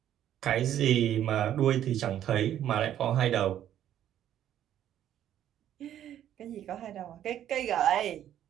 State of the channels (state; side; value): quieter; left; 11.1 dB